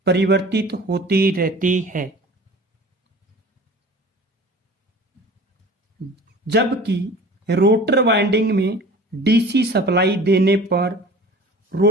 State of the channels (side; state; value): both; normal; correlation 0.42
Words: परिवर्तित होती रहती है, जबकि रोटर वाइंडिंग में डीसी सप्लाई देने पर